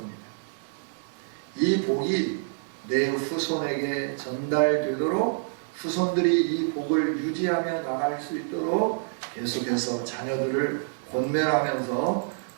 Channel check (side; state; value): left; silent; 57 dB below the other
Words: 이 복이 내 후손에게 전달되도록 후손들이 이 복을 유지하며 나갈 수 있도록 계속해서 자녀들을 권면하면서